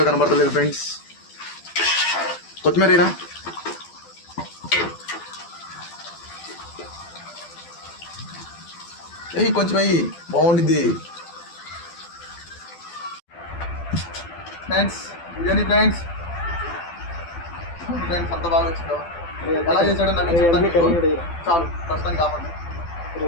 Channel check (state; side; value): late; right; 12 ms